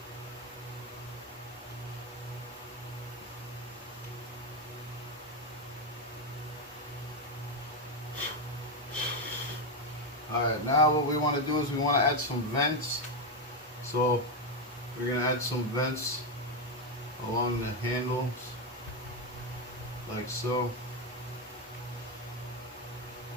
Alright, now what we want to do is we want to add some vents. So we're going to add some vents along the handles, like so.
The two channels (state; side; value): normal; both; correlation 0.07